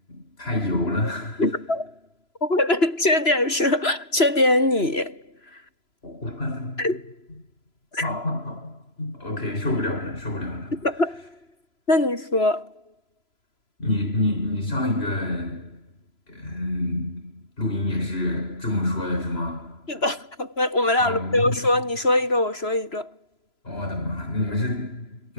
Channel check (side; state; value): right; late; 3.0 ms